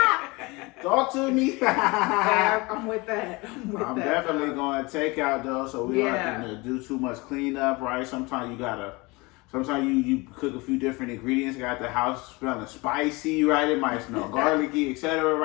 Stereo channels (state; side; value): quieter; right; 24.8 dB